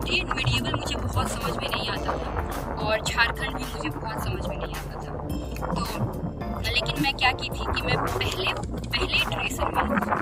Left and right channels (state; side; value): identical; both; correlation 1.00